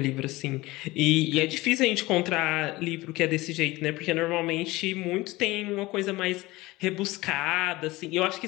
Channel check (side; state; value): right; quieter; 20.1 dB